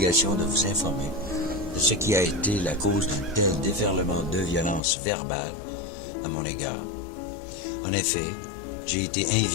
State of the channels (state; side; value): drops out; right; at 4.8 s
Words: de vous informer de ce qui a été la cause d'un tel déferlement de violence verbale à mon égard. En effet, j'ai été